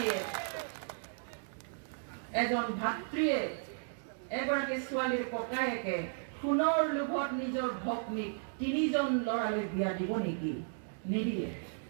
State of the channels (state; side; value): silent; left; digital silence